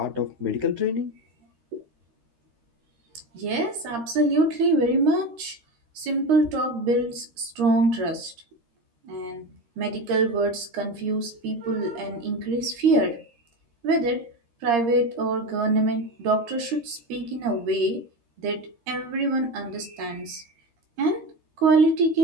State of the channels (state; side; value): late; left; 13 ms